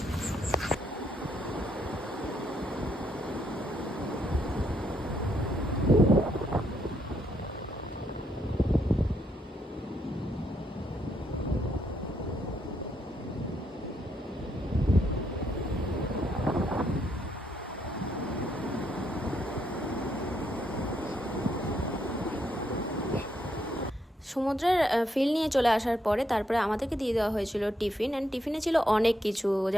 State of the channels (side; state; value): both; normal; correlation 0.76